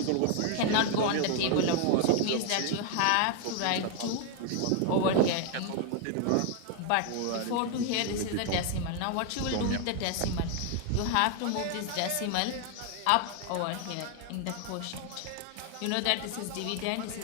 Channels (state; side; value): different; both; correlation 0.00